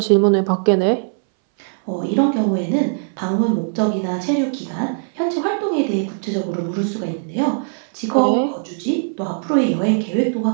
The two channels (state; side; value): silent; left; 62 dB below the other